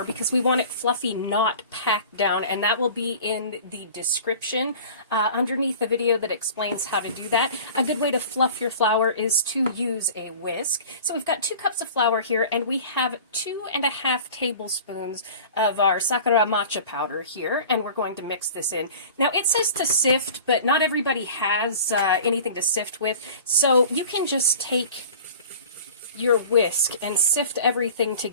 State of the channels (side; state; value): both; inverted; correlation -0.42